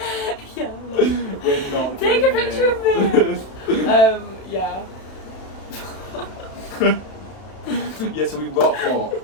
Yeah, like, We're not take a getting picture in. of me. Yeah. Yeah, so we rock up,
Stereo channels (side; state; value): right; late; 32 ms